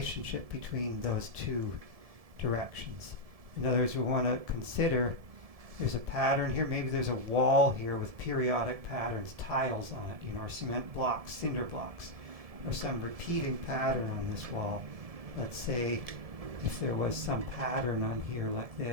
between those two directions. In other words, we want to consider there's a pattern here, maybe there's a wall here with periodic patterns, tiles on it, or cement blocks, cinder blocks, or some repeating pattern on this wall. Let's say if there was some pattern on here like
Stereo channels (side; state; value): left; late; 1.7 ms